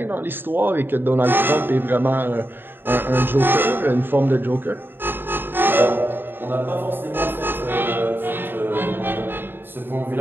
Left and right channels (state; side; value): late; left; 0.098 ms